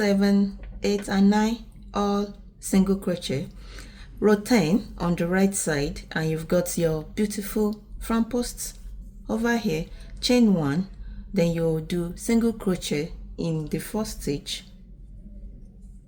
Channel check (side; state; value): both; identical; correlation 1.00